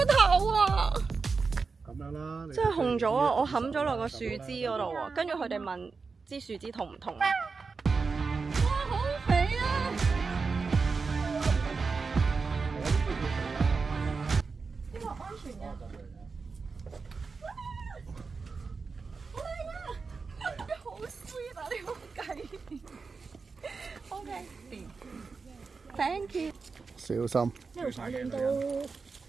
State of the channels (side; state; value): left; quieter; 4.7 dB